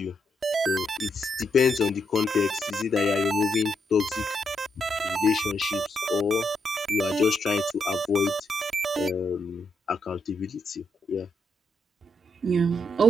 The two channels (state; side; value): normal; both; correlation 0.79